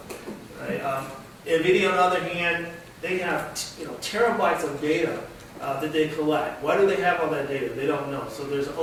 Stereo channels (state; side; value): identical; both; correlation 1.00